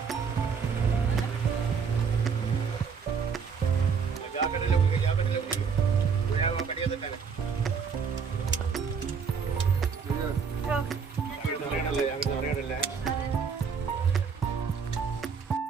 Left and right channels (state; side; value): quieter; left; 6.0 dB